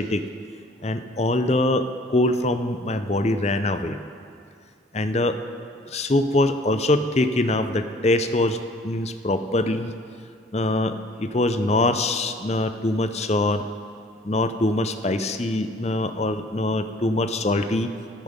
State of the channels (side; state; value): both; normal; correlation 0.54